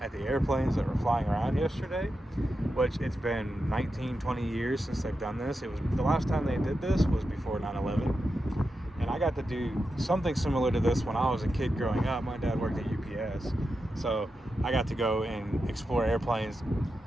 the airplanes that were flying around yesterday, which it's been 19-20 years since they've done this. It was the last time they did this was before 9/11, and I got to do something similar to this when I was a kid growing up. My dad worked at UPS, so I got to go and explore airplanes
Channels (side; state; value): both; normal; correlation 0.89